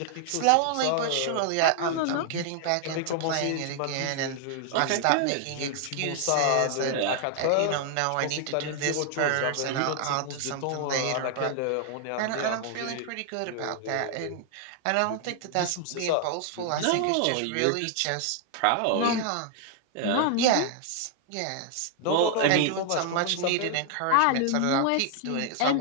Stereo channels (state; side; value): different; both; correlation 0.00